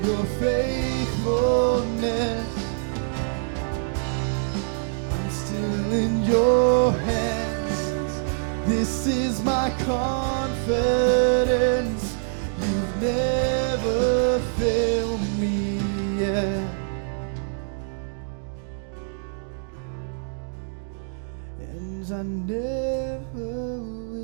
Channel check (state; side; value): silent; left; digital silence